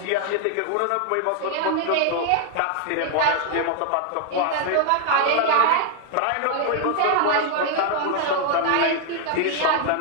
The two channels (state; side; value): different; both; correlation 0.00